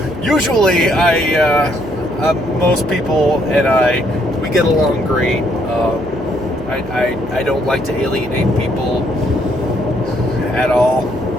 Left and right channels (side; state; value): right; noise; hum, 19 dB below the sound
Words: usually most people and we get along great. I don't like to alienate people at all.